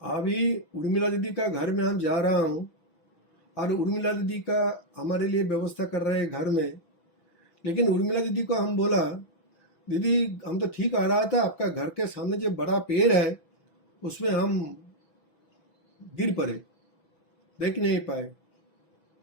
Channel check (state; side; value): late; right; 6.1 ms